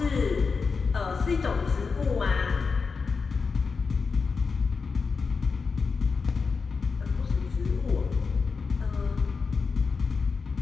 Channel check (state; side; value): quieter; right; 4.9 dB